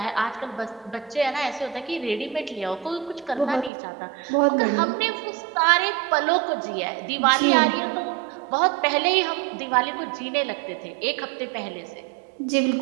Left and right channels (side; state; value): left; drops out; at 3.7 s